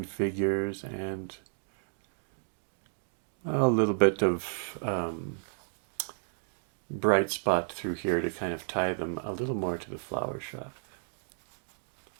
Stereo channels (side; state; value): left; silent; digital silence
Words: figures and a little bit of bright spot through here to kind of tie them a little more to the flower shop.